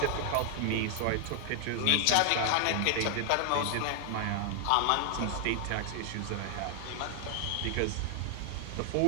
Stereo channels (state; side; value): different; both; correlation 0.00